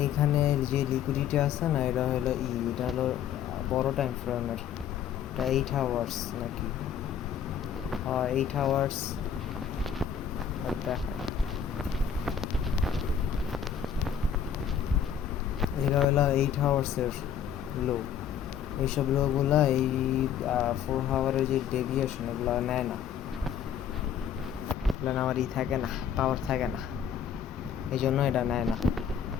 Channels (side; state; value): right; quieter; 8.3 dB